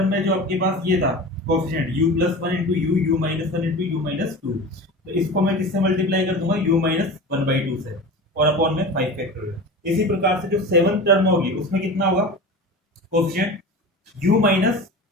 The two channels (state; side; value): normal; both; correlation 0.32